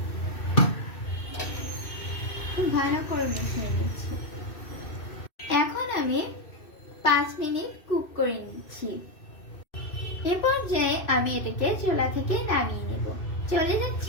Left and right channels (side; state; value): right; late; 2.6 ms